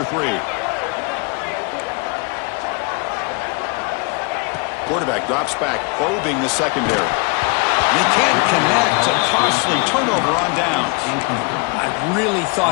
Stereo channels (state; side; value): quieter; right; 30.6 dB